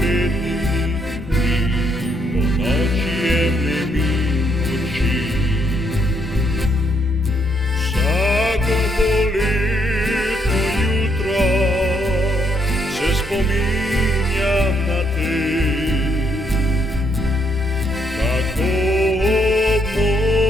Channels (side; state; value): both; normal; correlation 0.74